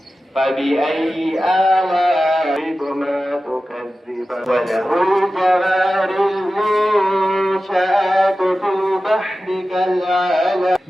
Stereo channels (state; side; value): normal; both; correlation 0.94